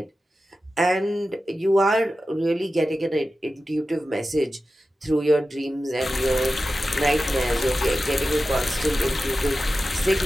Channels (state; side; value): normal; both; correlation 0.93